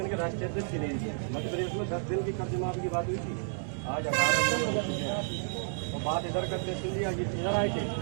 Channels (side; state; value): left; silent; 57 dB below the other